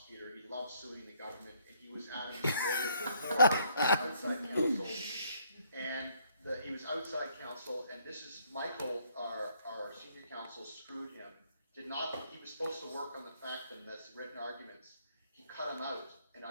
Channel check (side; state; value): both; inverted; correlation -0.68